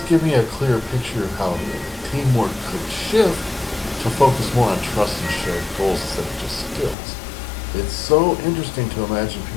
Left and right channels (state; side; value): drops out; right; at 7.0 s